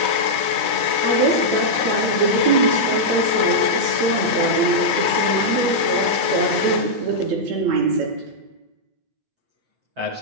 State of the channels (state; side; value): late; left; 8.4 ms